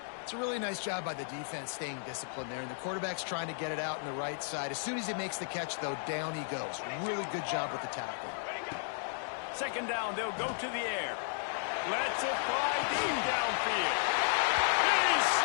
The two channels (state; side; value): silent; right; digital silence